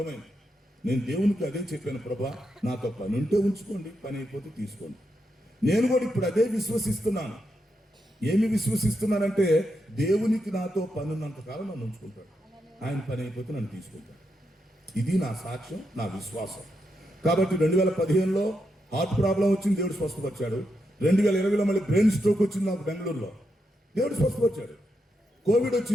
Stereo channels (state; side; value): normal; both; correlation 0.83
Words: నేను దేవునికి అదే చెప్పాను, ప్రభా నాతో పని ఉంటే ఉంచుకోండి, పని అయిపోతే తీసుకోండి. నేను కూడా ఇప్పుడు అదే విశ్వసిస్తున్నాను. ఏమి విశ్వసిస్తున్నానంటే, దేవునికి నాతో పని ఉన్నంతకాలం నన్ను ఉంచుకుంటాడు, ఆయన పని అయిపోతే నన్ను తీసుకుంటాడు. ఇది నా సాక్ష్యం, నా విశ్వాసం. కాబట్టి 2015లో హార్ట్ ప్రాబ్లం వచ్చింది, దేవుడు స్వస్థపరిచాడు. 2020లో మళ్ళీ బ్రెయిన్ స్ట్రోక్ వచ్చింది నాకు బెంగళూరులో, దేవుడు స్వస్థపరిచాడు. కోవిడ్